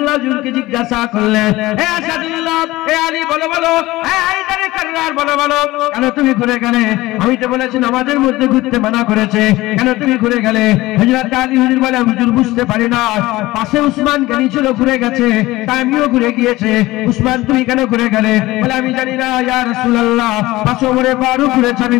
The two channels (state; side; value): quieter; right; 18.6 dB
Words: হুজুরকে জিজ্ঞাসা করলেন, হে আসাদুল্লাহ, হে আলী বলো বলো, হে হায়দারে কাররার বলো বলো, কেন তুমি ঘুরে গেলে? আমি তো বলেছি নামাজের মধ্যে ঘুরতে মানা করেছে, কেন তুমি ঘুরে গেলে? হযরত আলী হুজুর বলে, হুজুর বুঝতে পারি না, পাশে উসমান গানি ছিল, ঘুরে গেছে, তাই আমিও ঘুরে গিয়েছে। উসমান তুমি কেন ঘুরে গেলে? বলে আমি জানি না ইয়া রাসূলুল্লাহ, পাশে ওমরে ফারুক ঘুরেছে, আমি